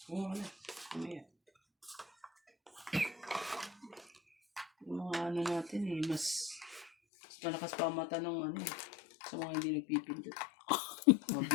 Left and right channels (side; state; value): right; drops out; at 6.9 s